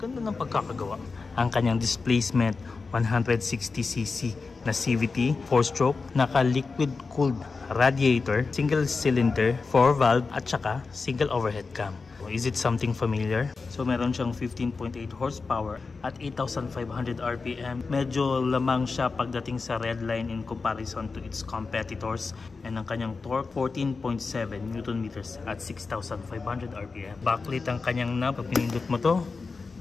ng pagkakagawa. Ang kanyang displacement, 160cc na CVT, 4-stroke, naka-liquid cooled radiator, single cylinder, 4-valve, at saka single overhead cam. Is it something familiar? So meron siyang 15.8 horsepower at 8,500 RPM. Medyo lamang siya pagdating sa red line in comparison to its competitors. And ang kanyang torque, 14.7 Nm at 6,500 RPM. Backlit ang kanyang knob. Pag pinindot mo to,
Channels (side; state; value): right; quieter; 4.4 dB